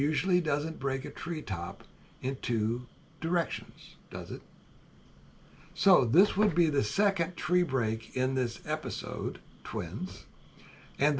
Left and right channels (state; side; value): identical; both; correlation 1.00